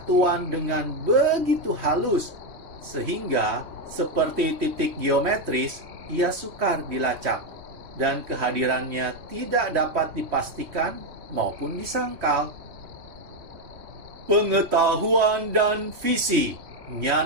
dengan begitu halus, sehingga seperti titik geometris, ia sukar dilacak, dan kehadirannya tidak dapat dipastikan maupun disangkal. Pengetahuan dan visi.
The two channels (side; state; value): left; late; 3.0 ms